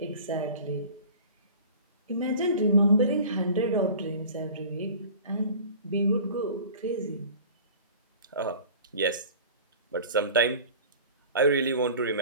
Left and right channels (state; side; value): inverted; both; correlation -0.41